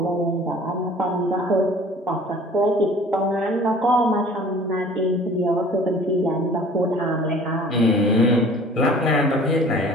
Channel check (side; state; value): both; normal; correlation 0.49